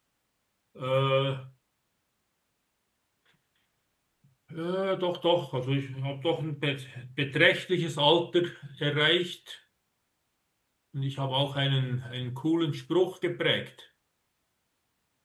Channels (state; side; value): identical; both; correlation 1.00